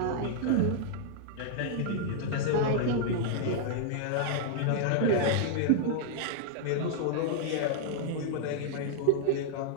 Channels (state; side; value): different; both; correlation -0.01